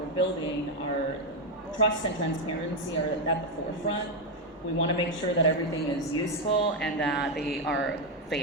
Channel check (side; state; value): both; normal; correlation 0.05